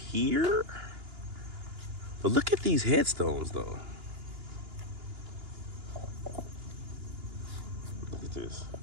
But look at these headstones, though. Look at this.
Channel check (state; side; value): late; left; 2.9 ms